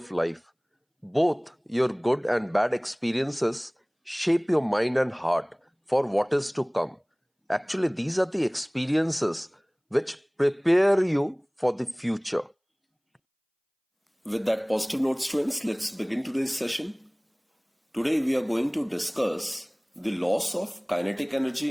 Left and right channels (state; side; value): identical; both; correlation 1.00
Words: life. Both your good and bad experiences shape your mind and heart for what is to come. Actually, these are the experiences which prepare you for the future. With that positive note, students, let's begin today's session. Today we are going to discuss the loss of kinetic energy